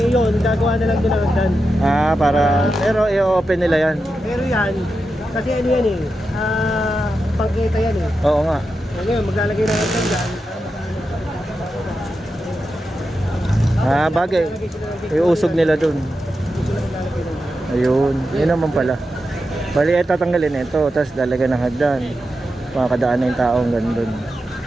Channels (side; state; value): both; normal; correlation 0.89